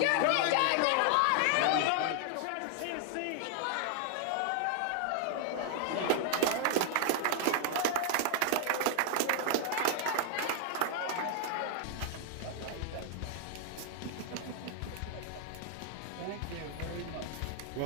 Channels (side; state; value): both; different; correlation 0.00